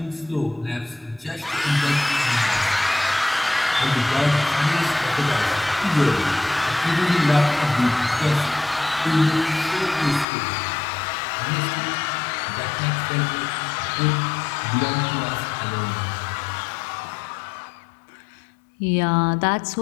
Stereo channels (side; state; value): right; drops out; at 10.2 s